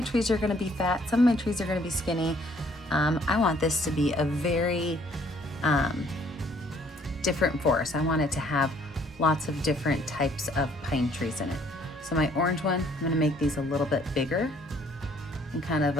trees are gonna be fat, some of my trees are gonna be skinny. I want this to be a very different forest. I want it to have lots of different types of pine trees in it. So my orange one, I'm gonna make these a little bit bigger and kind of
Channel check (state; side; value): normal; both; correlation 0.62